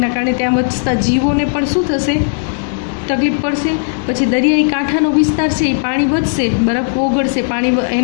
કારણે ત્યાં વસતા જીવોને પણ શું થશે, તકલીફ પડશે. પછી દરિયાઈ કાંઠાનો વિસ્તાર છે એ પાણી વધશે, બરફ ઓગળશે, પાણી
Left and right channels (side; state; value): right; silent; digital silence